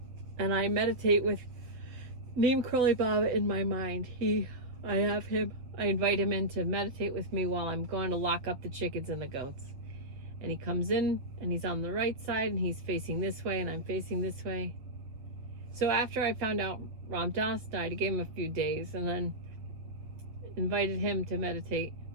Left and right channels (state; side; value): late; left; 7.7 ms